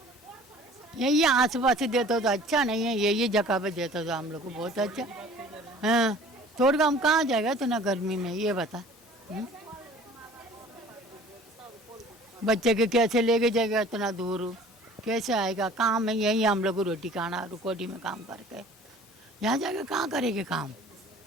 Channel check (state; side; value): normal; both; correlation 0.48